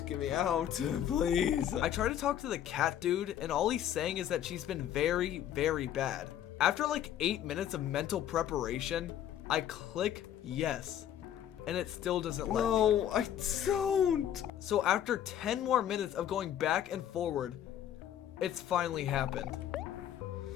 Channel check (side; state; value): right; quieter; 10.7 dB